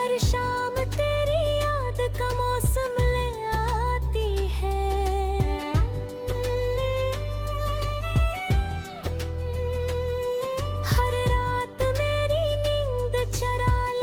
शाम तेरी याद का मौसम ले आती है, हर रात मेरी नींद चरा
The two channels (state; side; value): identical; both; correlation 1.00